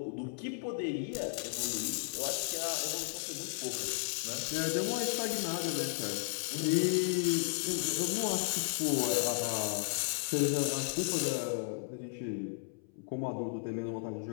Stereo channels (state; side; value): silent; right; 55 dB below the other